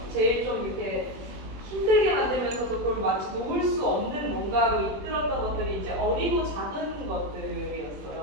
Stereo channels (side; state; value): left; late; 21 ms